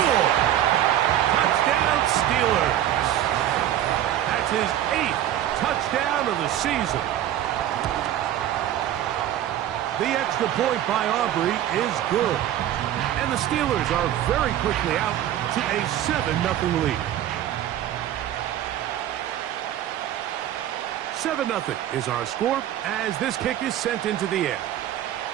Touchdown, Steelers. That's his 8th touchdown of the season. The extra point by Aubrey is good. And the Steelers are very quickly out to a 7-0 lead. 7-0 is our score as this kick is sent into the air.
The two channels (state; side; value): quieter; left; 11.9 dB